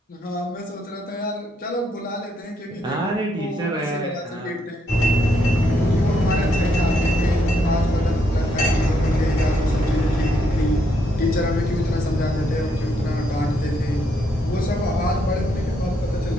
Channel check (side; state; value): both; normal; correlation 0.75